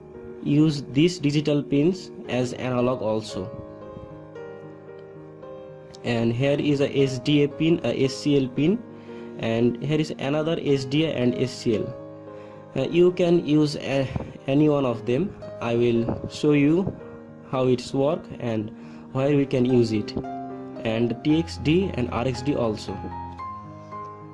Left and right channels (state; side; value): identical; both; correlation 1.00